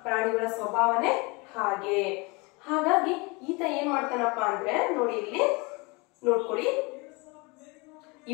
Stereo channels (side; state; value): right; quieter; 27.4 dB